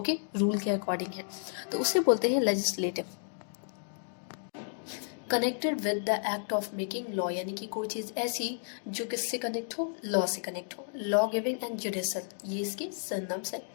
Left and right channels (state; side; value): silent; right; digital silence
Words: रूल के अकॉर्डिंग है, तो उसे बोलते हैं legislative. Connected with the act of making law, यानी कि कोई चीज़ ऐसी जो किससे कनेक्ट हो, लॉ से कनेक्ट हो. लॉ गिविंग एंड जुडिशल, ये इसके सिनोनिम्स है.